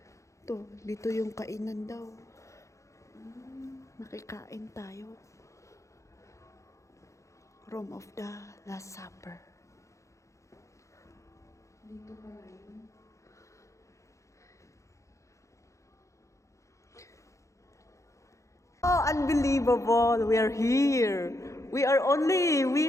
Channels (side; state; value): right; late; 0.15 ms